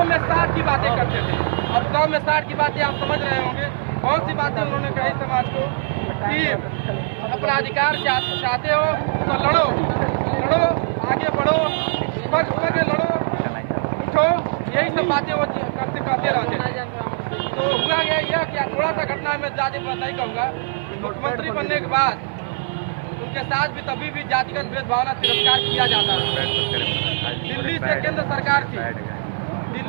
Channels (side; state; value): left; silent; digital silence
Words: में 60 की बातें करते थे। अब 100 में 60 की बातें आप समझ रहे होंगे। बहुत सी बातें उन्होंने कही समाज को कि अपना अधिकार चाहते हो तो लड़ो, लड़ो, आगे बढ़ो, पग लड़ो, उठो, यही सब बातें वो करते रहते। तो हुआ गया यह कि थोड़ा सा घटना में ज़्यादा नहीं कहूँगा। मुख्यमंत्री बनने के बाद उनके साथ भी तभी भी जातिगत भेदभाव तिरस्कार किया जाता है। दिल्ली से केंद्र सरकार थी,